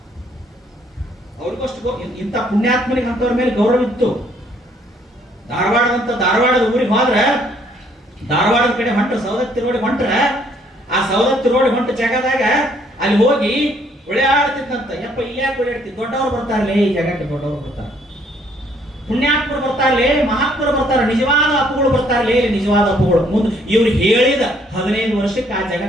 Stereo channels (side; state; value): both; normal; correlation 0.65